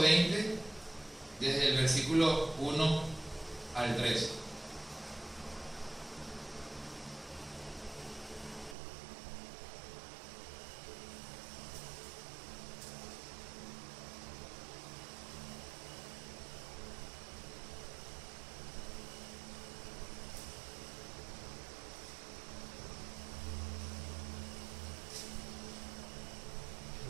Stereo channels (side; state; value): left; drops out; at 8.8 s